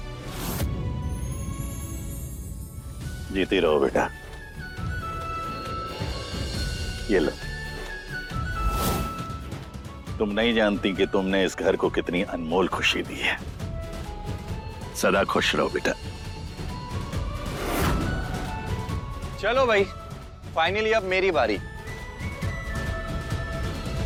जीती रहो बेटा। ये लो। तुम नहीं जानती कि तुमने इस घर को कितनी अनमोल खुशी दी है। सदा खुश रहो बेटा। चलो भाई, फाइनली अब मेरी बारी।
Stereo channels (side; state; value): both; identical; correlation 1.00